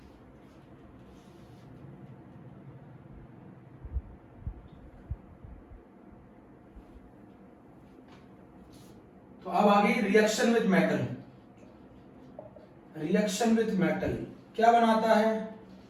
तो अब आ गई reaction with metal. Reaction with metal क्या बनाता है?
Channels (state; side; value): identical; both; correlation 1.00